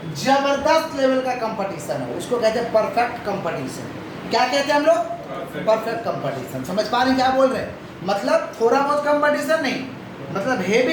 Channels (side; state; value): both; identical; correlation 1.00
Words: जबरदस्त लेवल का कंपटीशन हो, उसको कहते हैं परफेक्ट कंपटीशन। क्या कहते हैं हम लोग, परफेक्ट कंपटीशन। समझ पा रहे हैं क्या बोल रहे हैं, मतलब थोड़ा बहुत कंपटीशन नहीं, मतलब